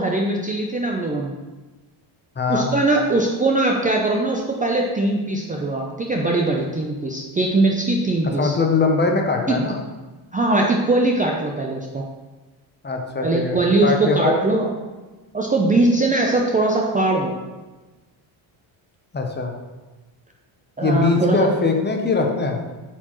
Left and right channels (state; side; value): normal; both; correlation 0.35